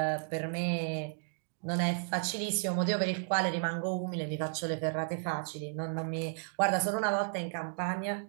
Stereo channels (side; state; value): left; silent; digital silence